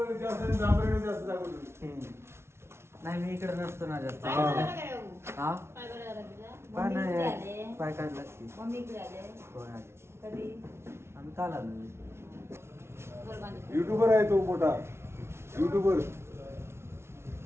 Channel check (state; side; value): late; left; 0.12 ms